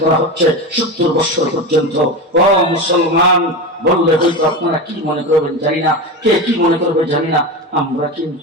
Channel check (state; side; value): normal; both; correlation 0.22